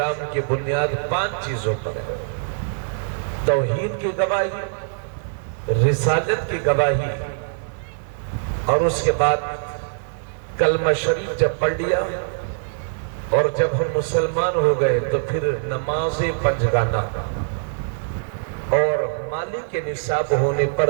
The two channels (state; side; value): silent; left; 57 dB below the other